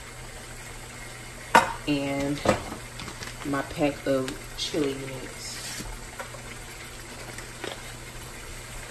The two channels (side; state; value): both; identical; correlation 1.00